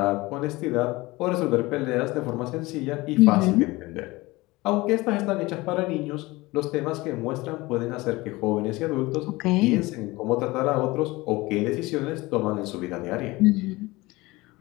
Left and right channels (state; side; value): quieter; right; 21.2 dB